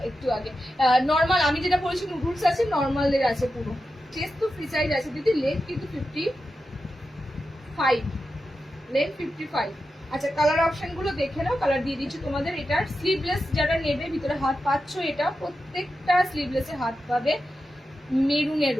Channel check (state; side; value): normal; both; correlation 0.90